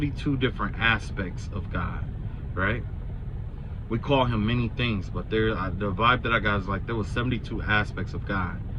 different aspects of God, right? We call him many things, but the vibe that I got is like there was 72 aspects of God.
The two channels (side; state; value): both; identical; correlation 1.00